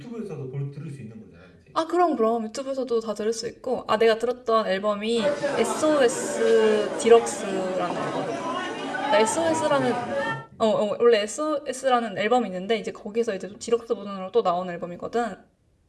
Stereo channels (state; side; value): identical; both; correlation 1.00